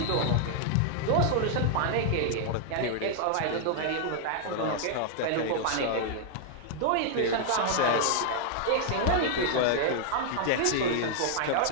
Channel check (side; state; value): both; different; correlation -0.01